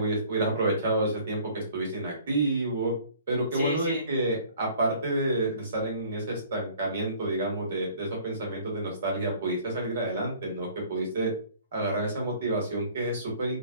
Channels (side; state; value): both; inverted; correlation -0.53